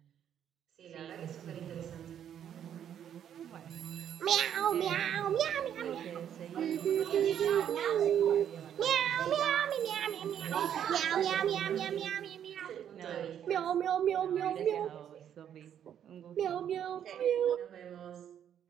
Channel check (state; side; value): quieter; left; 9.5 dB